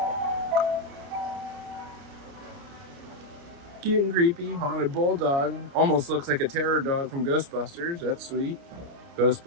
Cute and creepy, haunted bulldog. Almost looks like a terror dog from Ghostbusters. That's sweet.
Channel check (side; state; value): left; late; 30 ms